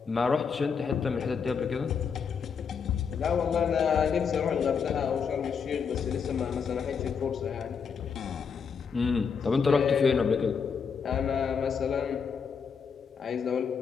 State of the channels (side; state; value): right; quieter; 6.2 dB